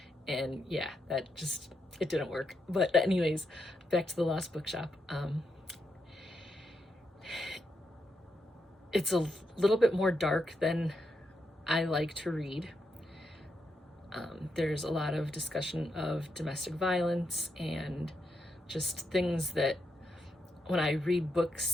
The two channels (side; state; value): both; normal; correlation 0.82